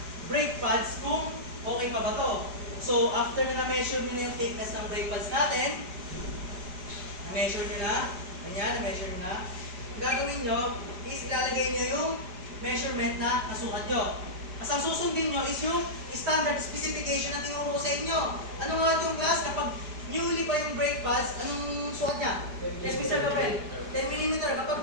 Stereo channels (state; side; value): late; left; 4.9 ms